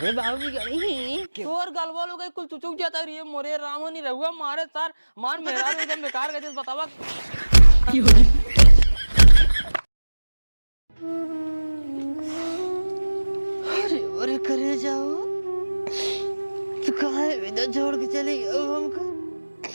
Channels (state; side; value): inverted; both; correlation -1.00